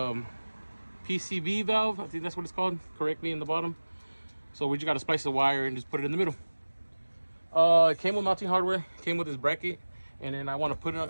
PCB valve. I think that's what it's called correctly in the bottom. So we just gotta splice the wire and just put it in the middle. It came with mounting hardware. It came with this bracket, and then I want to put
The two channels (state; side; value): inverted; both; correlation -1.00